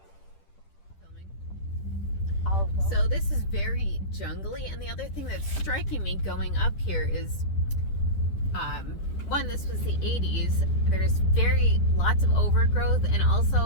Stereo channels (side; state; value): right; late; 10 ms